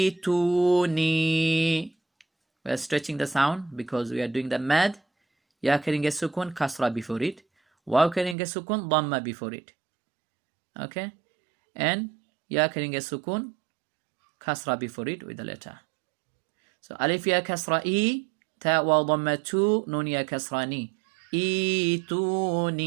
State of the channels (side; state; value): left; drops out; at 8.3 s